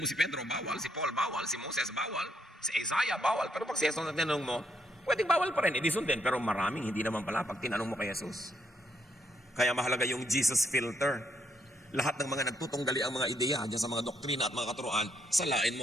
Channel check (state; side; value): normal; both; correlation 0.74